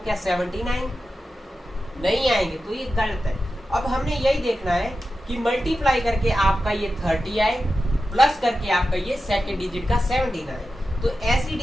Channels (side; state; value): both; normal; correlation 0.92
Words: क्या 17 आएंगे? नहीं आएंगे, तो ये गलत है। अब हमने यही देखना है कि मल्टीप्लाई करके आपका ये 30 आए, प्लस करके आपका ये सेकंड डिजिट का 17 आए। तो ऐसी